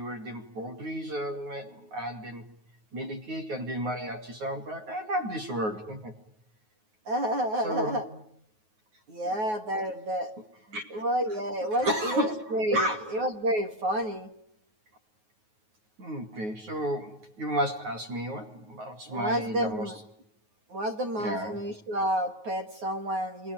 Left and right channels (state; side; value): late; left; 9.4 ms